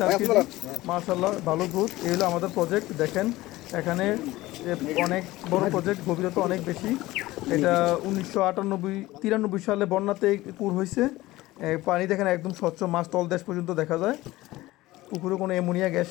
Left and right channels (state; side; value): quieter; right; 18.0 dB